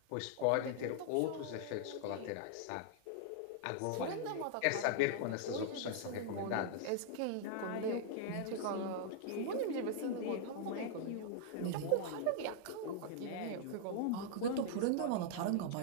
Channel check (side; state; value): both; different; correlation -0.01